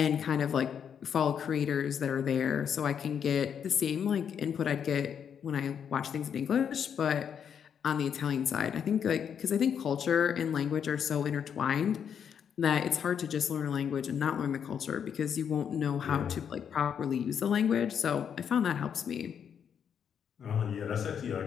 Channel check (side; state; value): right; quieter; 7.9 dB